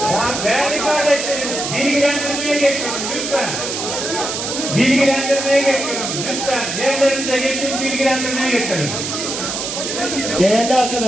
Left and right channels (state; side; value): noise; right; hiss, 4 dB below the sound